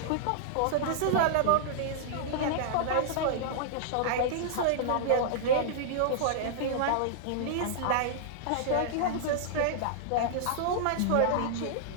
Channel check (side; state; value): both; different; correlation -0.02